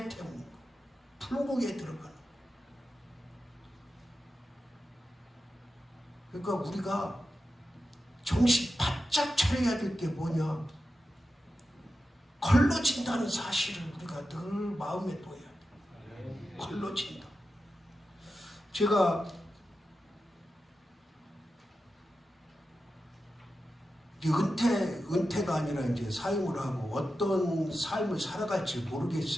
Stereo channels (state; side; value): normal; both; correlation 0.91